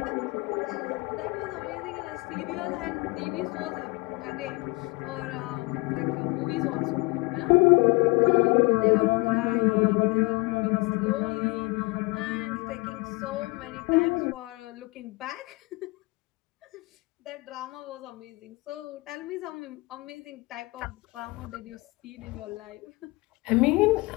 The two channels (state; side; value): quieter; right; 25.4 dB